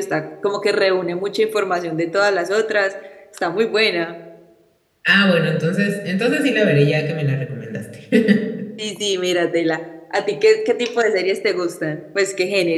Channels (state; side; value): identical; both; correlation 1.00